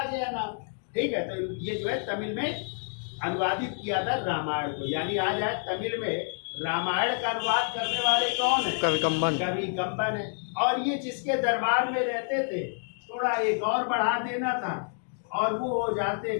गया नाम? ठीक है। तो ये जो है तमिल में अनुवादित किया था रामायण को। यानी आ जाए तमिल में रामायण का अनुवाद करने वाले कौन है? कवि कंबन है। और ये जिसके दरबार में रहते थे, थोड़ा एक और बढ़ा देना था और वो हो जाते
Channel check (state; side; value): silent; right; 59 dB below the other